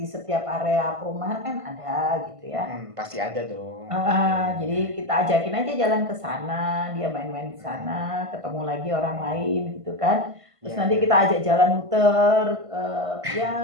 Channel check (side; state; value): left; late; 1.5 ms